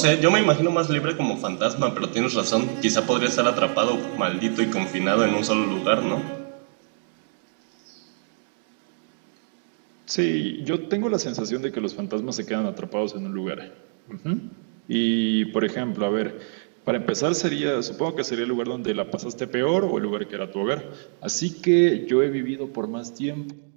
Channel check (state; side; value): silent; left; digital silence